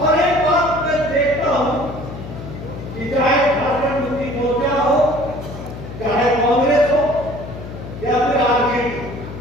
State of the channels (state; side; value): noise; left; hum, 11 dB below the sound